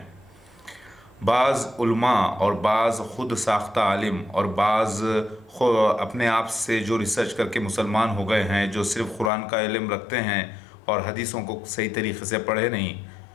بعض علماء اور بعض خود ساختہ عالم اور بعض اپنے آپ سے جو ریسرچ کر کے مسلمان ہو گئے ہیں، جو صرف قرآن کا علم رکھتے ہیں اور حدیثوں کو صحیح طریقے سے پڑھے نہیں،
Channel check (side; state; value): right; drops out; at 9.3 s